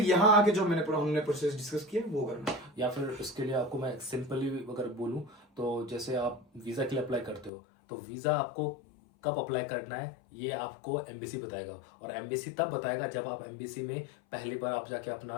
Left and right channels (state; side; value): drops out; right; at 7.5 s